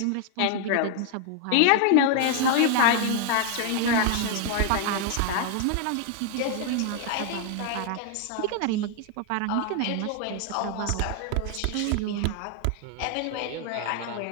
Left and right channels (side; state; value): both; different; correlation 0.00